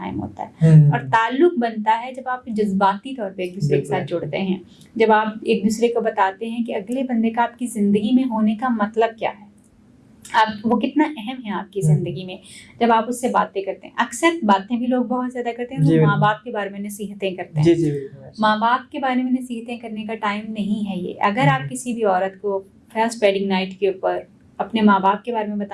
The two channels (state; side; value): identical; both; correlation 1.00